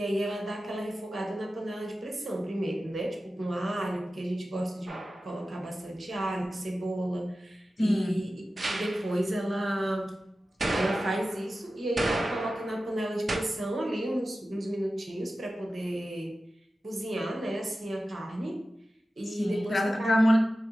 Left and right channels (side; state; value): both; normal; correlation 0.94